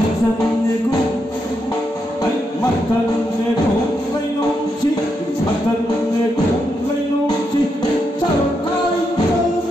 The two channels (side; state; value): both; normal; correlation 0.82